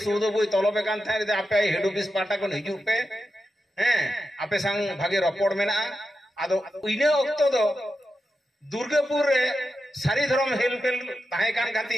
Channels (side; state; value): both; normal; correlation 0.89